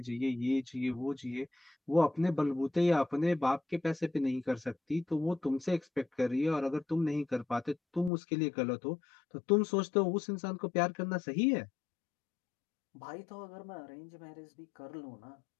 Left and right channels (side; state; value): right; drops out; at 8.1 s